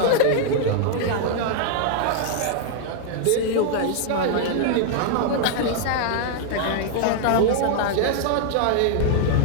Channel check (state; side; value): different; both; correlation 0.00